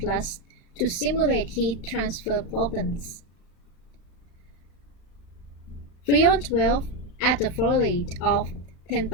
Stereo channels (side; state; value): right; late; 35 ms